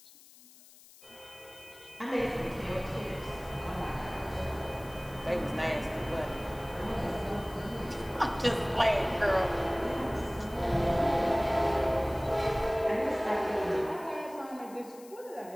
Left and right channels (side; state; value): left; noise; hiss, 22 dB below the sound